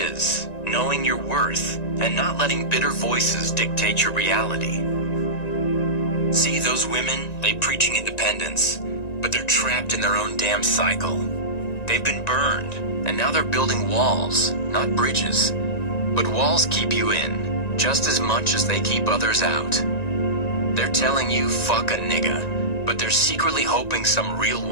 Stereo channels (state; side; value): late; right; 1.9 ms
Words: knowing your worth, and not letting bitter voices dictate your reality. See those women, they preaching independence, but they're trapped in their own damn cycle. They've been burned, and now they're building walls, not bridges. But walls keep you in, just as much as they keep others out. They're telling you fuck a nigga, but they're secretly hoping some real